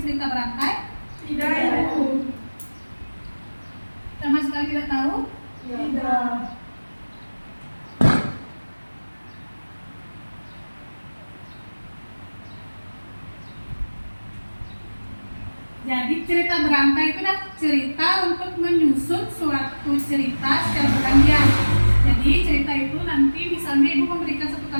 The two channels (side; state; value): both; inverted; correlation -1.00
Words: cerita berantai? Tidak, Ibu. Sama sekali tidak tahu? Tidak. Jadi cerita berantai itu adalah cerita untuk menyusun suatu cerita secara bergantian. Jadi cerita itu nanti misalnya Ibu memberikan satu